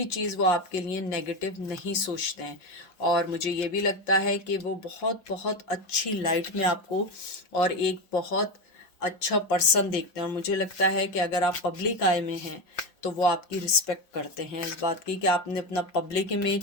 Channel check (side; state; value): right; late; 5.4 ms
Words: चीज़ वो आपके लिए नेगेटिव नहीं सोचते हैं। और मुझे ये भी लगता है कि वो बहुत बहुत अच्छी लाइट में आपको और एक बहुत अच्छा पर्सन देखते हैं। और मुझे लगता है कि अगर आप पब्लिक आई में हैं तो वो आपकी रिस्पेक्ट करते हैं इस बात की कि आपने अपना पब्लिक